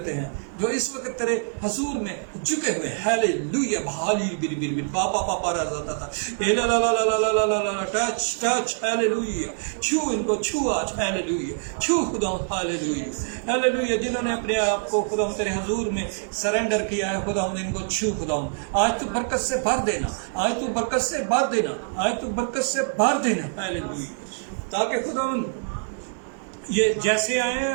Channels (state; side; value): silent; left; digital silence